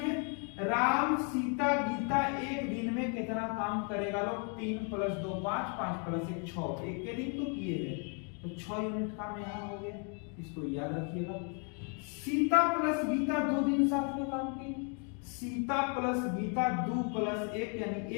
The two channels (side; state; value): right; quieter; 39.4 dB